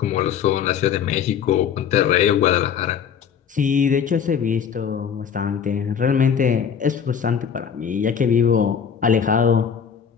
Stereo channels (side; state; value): right; quieter; 7.6 dB